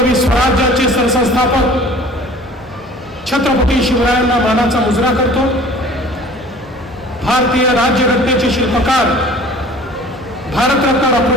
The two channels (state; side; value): normal; both; correlation 0.47